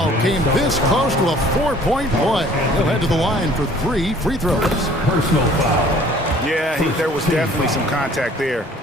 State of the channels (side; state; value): both; normal; correlation 0.54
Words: came this close to a 4-point play. He'll head to the line for 3 free throws. Personal foul. Yeah, there was definitely some contact there